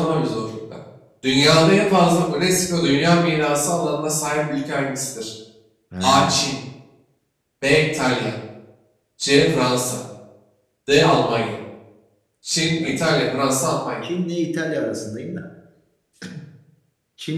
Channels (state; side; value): identical; both; correlation 1.00